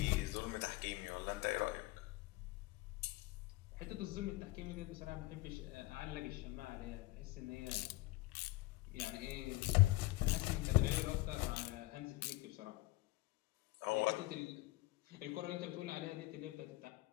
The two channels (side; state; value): right; quieter; 20.0 dB